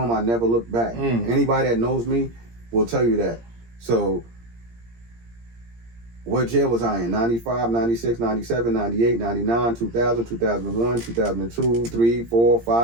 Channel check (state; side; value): late; left; 17 ms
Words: I never looked back. Anybody that knows me will tell you that. So what jail was I in? 95, 96, 97, 98, 99, 2000, 2001, 2002, 3, 4,